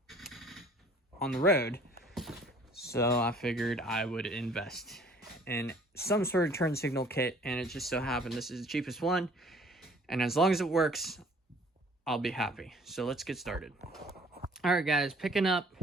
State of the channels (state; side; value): normal; both; correlation 0.54